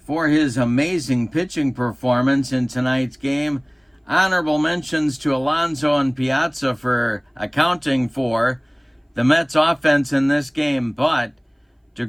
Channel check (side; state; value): both; identical; correlation 1.00